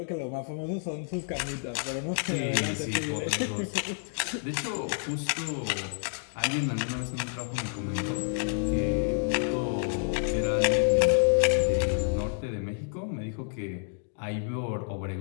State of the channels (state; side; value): silent; right; digital silence